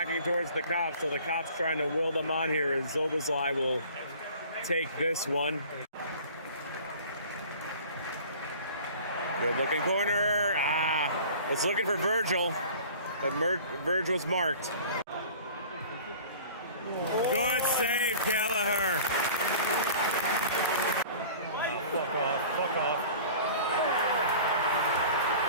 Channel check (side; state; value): both; inverted; correlation -0.44